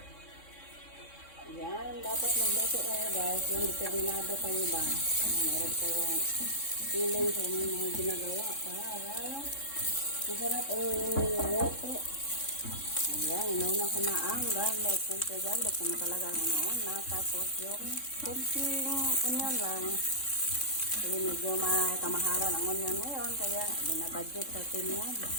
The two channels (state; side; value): late; right; 3.6 ms